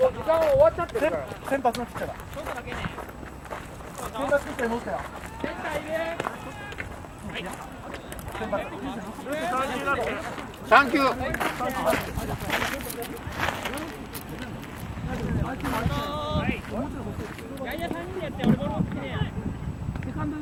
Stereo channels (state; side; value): identical; both; correlation 1.00